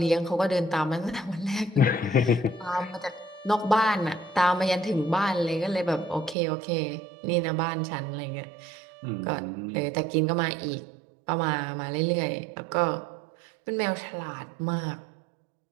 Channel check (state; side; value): drops out; left; at 6.4 s